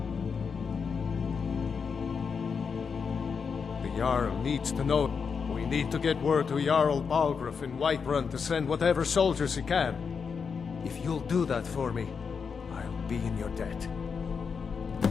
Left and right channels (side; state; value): right; quieter; 5.9 dB